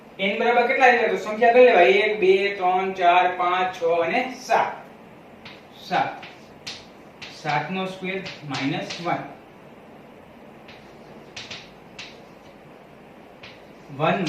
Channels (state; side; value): identical; both; correlation 1.00